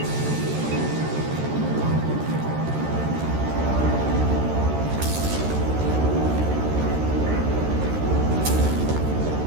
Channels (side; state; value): left; late; 13 ms